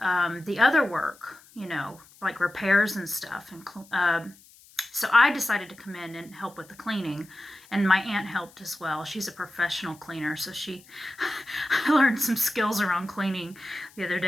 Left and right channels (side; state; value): left; noise; hiss, 25 dB below the sound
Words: other work, like repairs and stuff. And so I decided to come in and help with the cleaning. And my aunt helped as well. She's a professional cleaner. So I learned some skills around cleaning the other